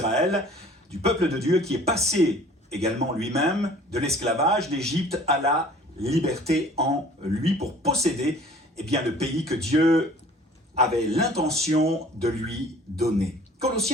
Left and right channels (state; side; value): normal; both; correlation 0.50